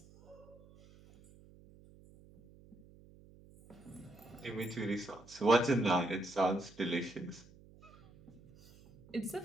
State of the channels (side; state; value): right; noise; hum, 23 dB below the sound